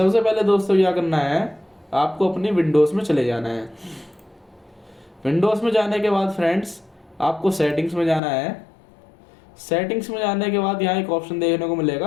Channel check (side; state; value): right; drops out; at 8.2 s